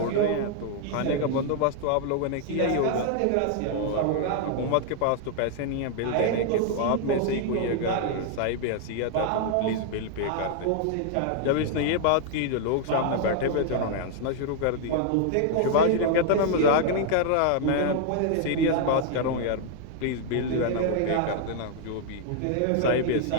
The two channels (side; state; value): both; different; correlation 0.00